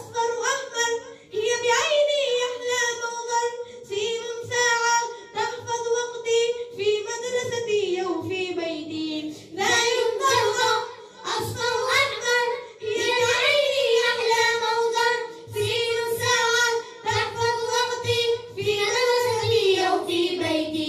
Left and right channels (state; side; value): identical; both; correlation 1.00